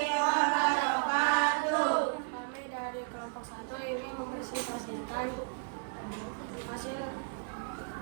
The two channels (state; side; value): silent; left; digital silence